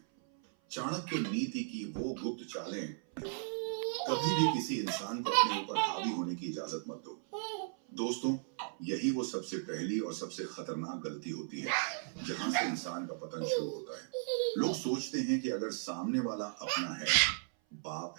चाणक्य नीति की वो गुप्त चालें। कभी भी किसी इंसान को अपने ऊपर हावी होने की इजाजत मत दो। दोस्तों, यही वो सबसे पहली और सबसे खतरनाक गलती होती है जहां से इंसान का पतन शुरू होता है। लोग सोचते हैं कि अगर सामने वाला अपना है, बाप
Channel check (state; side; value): silent; left; 54 dB below the other